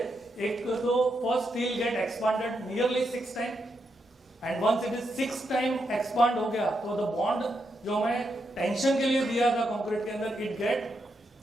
एक तो first steel get expanded nearly 6 time, and once it is 6 time expand हो गया तो द बॉन्ड जो हमें टेंशन के लिए दिया था कंक्रीट के अंदर it get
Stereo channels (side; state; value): both; normal; correlation 0.82